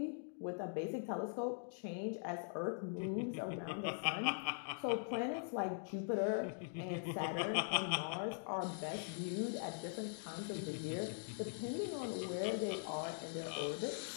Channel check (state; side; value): silent; right; digital silence